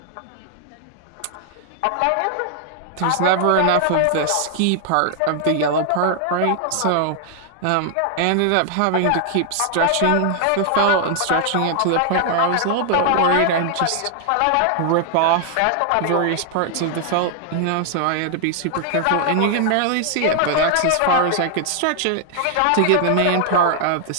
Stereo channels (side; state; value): both; different; correlation 0.00